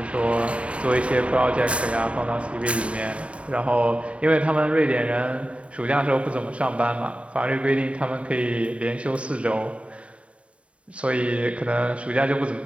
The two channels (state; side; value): late; left; 0.062 ms